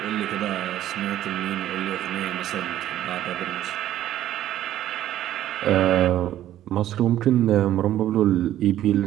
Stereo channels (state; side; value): quieter; left; 12.6 dB